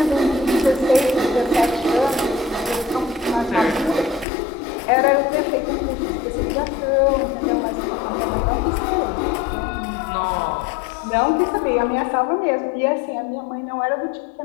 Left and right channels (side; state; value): right; drops out; at 4.2 s